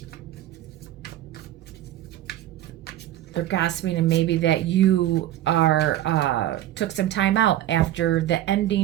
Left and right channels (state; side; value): quieter; left; 13.4 dB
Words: They're gossiping, and maybe that you are took some time out after the